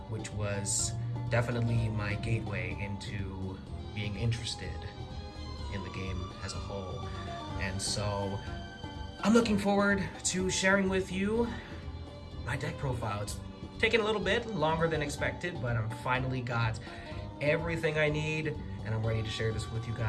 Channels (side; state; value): both; identical; correlation 1.00